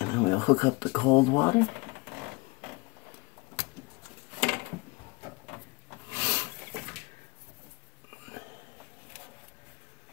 then we'll hook up the cold water.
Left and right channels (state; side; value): quieter; right; 24.6 dB